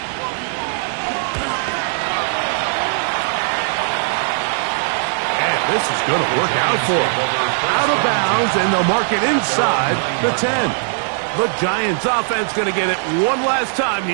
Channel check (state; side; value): silent; left; digital silence